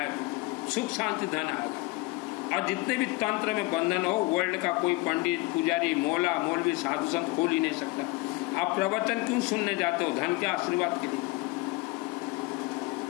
सुख शांति धन आएगा। और जितने भी तंत्र में बंधन हो, वर्ल्ड का कोई पंडित, पुजारी, मौला, मौलवी, साधु संत खोल ही नहीं सकता। आप प्रवचन क्यों सुनने जाते हो? धन के आशीर्वाद के लिए।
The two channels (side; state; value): right; quieter; 22.2 dB